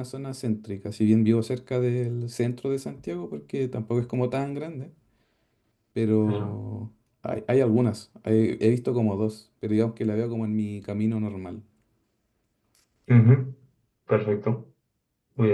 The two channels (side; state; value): both; identical; correlation 1.00